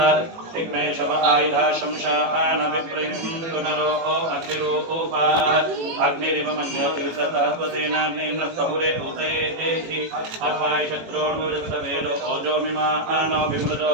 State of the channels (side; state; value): left; late; 18 ms